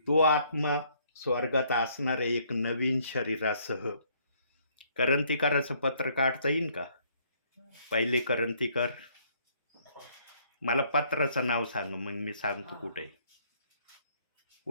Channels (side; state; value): both; inverted; correlation -0.65